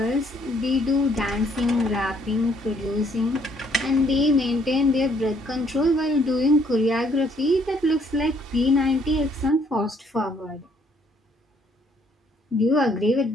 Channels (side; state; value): both; normal; correlation 0.66